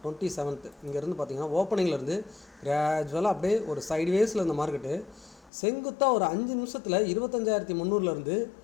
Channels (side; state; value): right; drops out; at 5.5 s